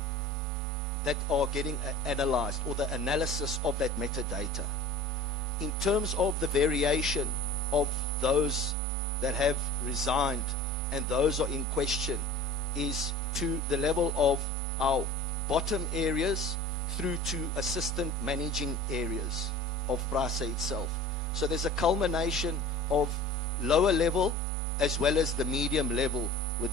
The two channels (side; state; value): both; normal; correlation 0.41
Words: that are getting analyzed, or the analysis of that metadata. In terms of the variation of those that have resigned and those are in question, is to the level of our bottom areas through to assistant managing areas of PRASA itself. So there's a culmination of lower level as well as the medium level